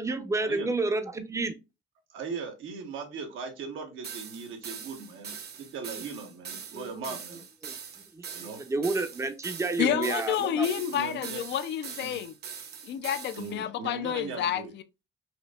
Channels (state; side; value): normal; both; correlation 0.26